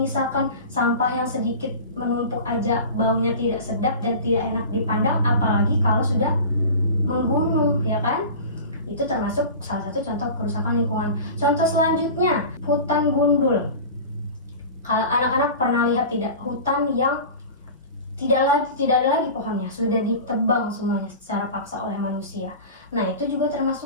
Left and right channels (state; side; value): inverted; both; correlation -0.34